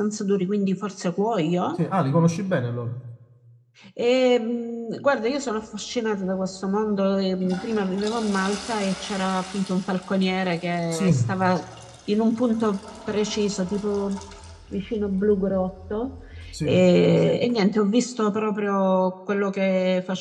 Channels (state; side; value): identical; both; correlation 1.00